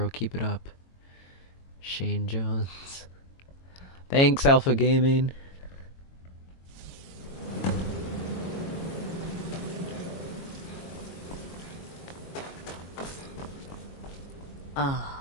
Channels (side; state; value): right; late; 22 ms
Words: Keep it up. Shane Jones. Thanks, Alpha Gaming.